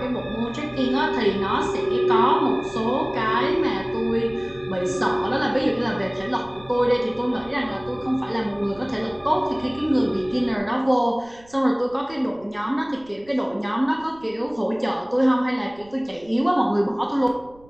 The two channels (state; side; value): noise; right; rumble, 26 dB below the sound